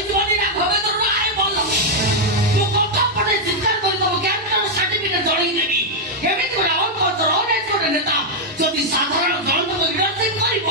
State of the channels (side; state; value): both; normal; correlation -0.02